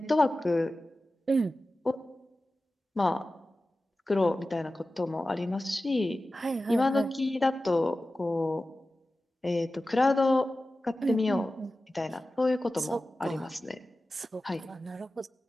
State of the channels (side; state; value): both; normal; correlation 0.95